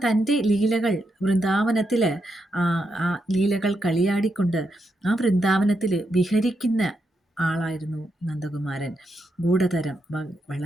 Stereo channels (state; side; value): normal; both; correlation 0.82